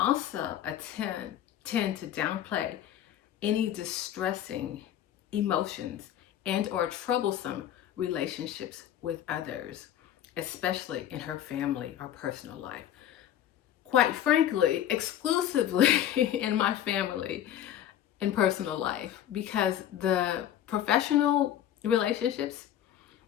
tend to downplay any distressing emotions and or troublesome relationships with others, especially in her family or personal life. Quite frankly, exclusively in my family and personal life, because the professional relationships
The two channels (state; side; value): quieter; right; 11.2 dB